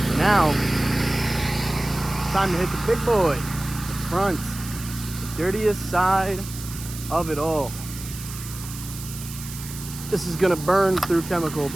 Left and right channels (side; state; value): right; noise; hiss, 12 dB below the sound